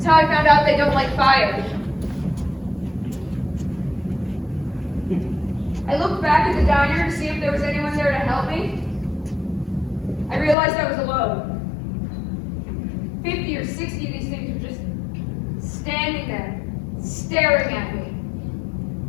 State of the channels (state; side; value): drops out; right; at 10.6 s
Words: how I found out they don't like fire. I looked back at the diner to see if there was anyone there to help me. I realized I was alone. 50 or 60 of these things were just standing there, staring at me.